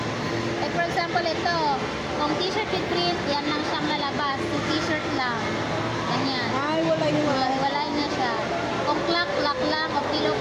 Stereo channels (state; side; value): identical; both; correlation 1.00